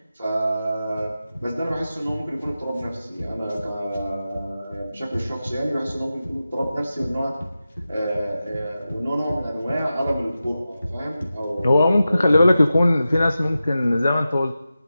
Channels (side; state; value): both; inverted; correlation -0.93